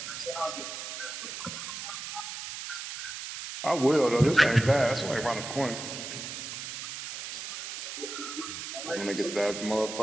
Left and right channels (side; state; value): right; noise; hiss, 7 dB below the sound